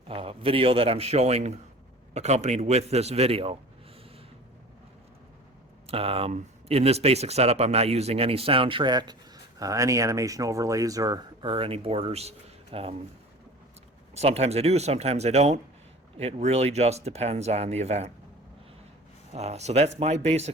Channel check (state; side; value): normal; both; correlation 0.40